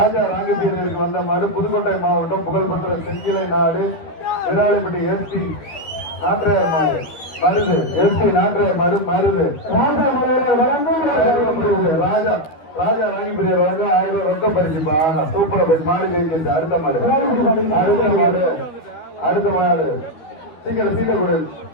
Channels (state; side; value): late; right; 13 ms